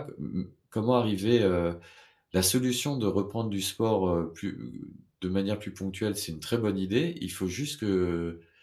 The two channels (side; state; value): both; identical; correlation 1.00